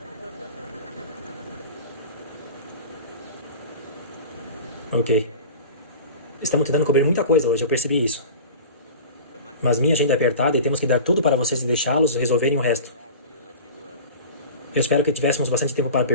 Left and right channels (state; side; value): inverted; both; correlation -0.35